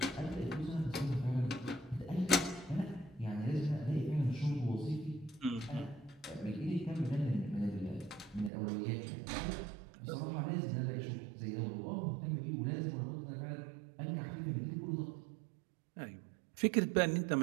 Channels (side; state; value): left; drops out; at 8.5 s